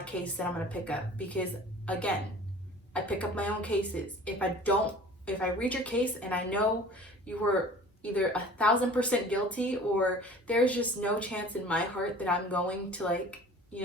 case that I'm going to pick up, because again, I pick up my own cases. If I read your case and I know you were either 1,000% guilty, or there's just no chance in my heart that I'm going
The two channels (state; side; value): normal; both; correlation 0.45